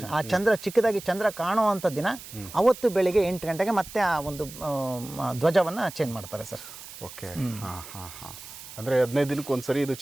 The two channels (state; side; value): noise; right; hiss, 15 dB below the sound